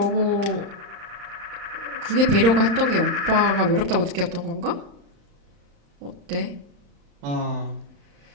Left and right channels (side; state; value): left; late; 35 ms